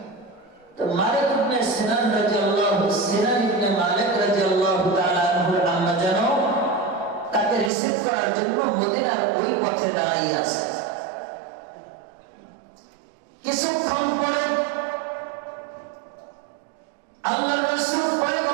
তো মালিক ইবনে সিনান ইবনে মালিক রাদিয়াল্লাহু তাআলা আনহুর আম্মা জান তাকে রিসিভ করার জন্য মদিনার ওই পথে দাঁড়িয়ে আছে। কিছুক্ষণ পরে আল্লাহর রাসূল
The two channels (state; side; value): drops out; left; at 7.7 s